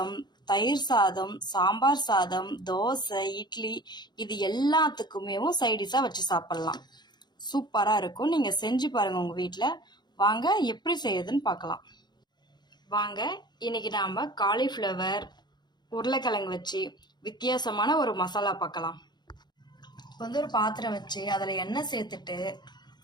தயிர் சாதம், சாம்பார் சாதம், தோசை, இட்லி இது எல்லாத்துக்குமே சைடிஷா வச்சு சாப்பிடலாம். சூப்பரா இருக்கும். நீங்க செஞ்சு பாருங்க உங்க வீட்டில். வாங்க எப்படி செய்யுதுன்னு பார்க்கலாம். வாங்க இன்னைக்கு நாம காலிஃப்ளவர் உருளைக்கிழங்கு வச்சு வித்தியாசமான ஒரு மசாலா பார்க்கலாம். ஒரு பாத்திரம் வச்சு அதில் எண்ணெய் சேர்த்துட்டு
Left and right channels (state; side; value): late; right; 0.21 ms